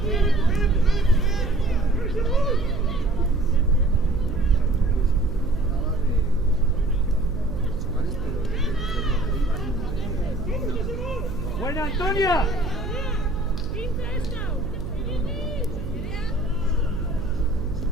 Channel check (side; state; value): right; noise; hum, 7 dB below the sound